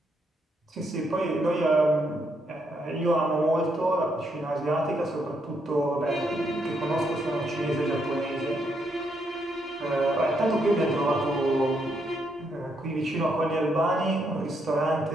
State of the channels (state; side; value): normal; both; correlation 0.77